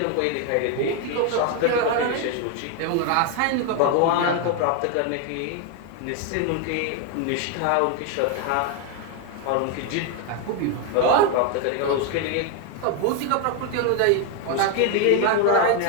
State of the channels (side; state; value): both; different; correlation 0.01